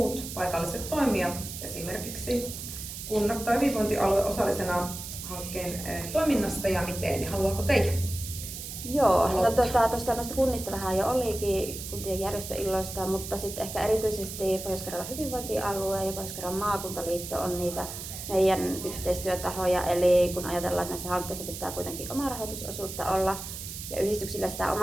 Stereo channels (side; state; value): right; noise; hiss, 9 dB below the sound